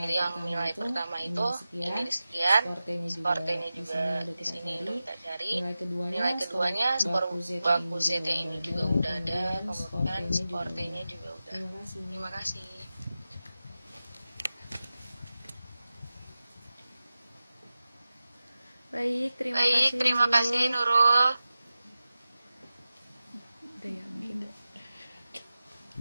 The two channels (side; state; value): both; inverted; correlation -0.94